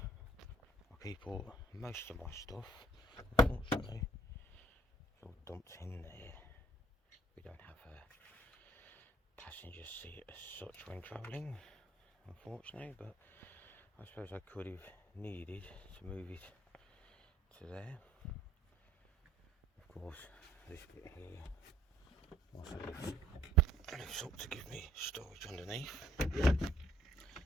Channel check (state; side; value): normal; both; correlation 0.62